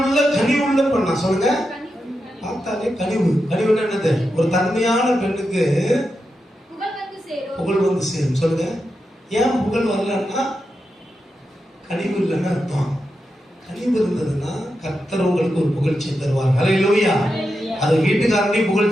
பெண்ணா சொல்லுங்க. பார்த்தாலே கனிவுன்னா என்னது? ஒரு தன்மையான பெண்ணுக்கு புகழ் வந்து சேரும். சொல்லுங்க. ஏன் புகழ் வரலன்னா கனிவு இல்லைன்னு அர்த்தம். கனிவு இருந்ததுன்னா கர்த்தர் உங்களுக்கு ஒரு புகழ்ச்சி தருவார். ஹல்லேலூயா. அது வீட்டுக்காரனையும்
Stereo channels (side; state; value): both; normal; correlation 0.88